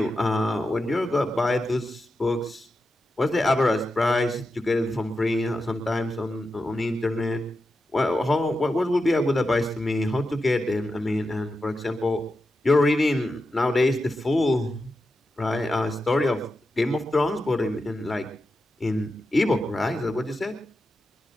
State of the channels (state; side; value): normal; both; correlation 0.89